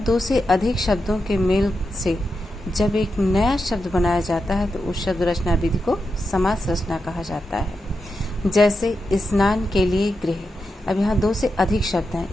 से अधिक शब्दों के मेल से जब एक नया शब्द बनाया जाता है तो उस शब्द रचना विधि को समास रचना कहा जाता है। जैसे स्नान के लिए गृह। अब यहाँ दो से अधिक शब्द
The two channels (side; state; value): both; normal; correlation 0.87